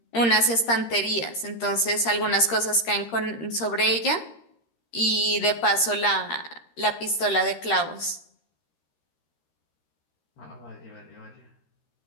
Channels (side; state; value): right; late; 13 ms